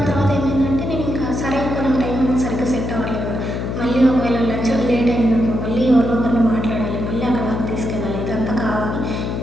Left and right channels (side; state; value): left; noise; hum, 3 dB below the sound